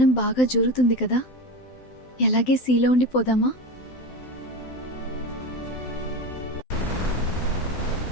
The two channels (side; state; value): right; late; 12 ms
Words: బాగా జరుగుతుంది కదా, ఎలాగే సీలో ఉండిపోదామా?